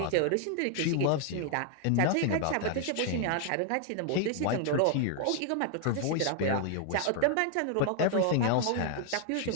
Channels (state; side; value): different; both; correlation 0.00